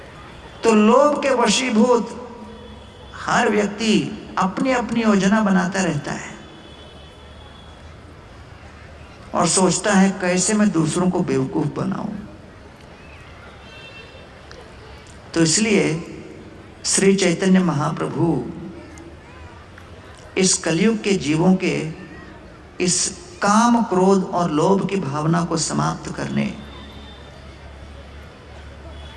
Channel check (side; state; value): both; identical; correlation 1.00